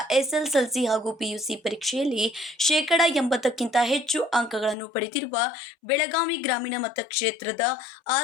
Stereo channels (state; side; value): drops out; right; at 4.8 s